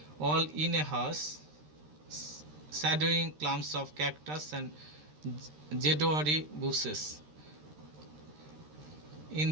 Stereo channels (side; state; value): left; late; 13 ms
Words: all in a house, shadowing clumps of cactus and jedwari bushes.